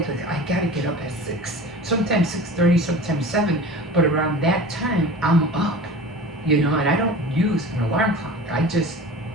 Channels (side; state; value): both; normal; correlation 0.37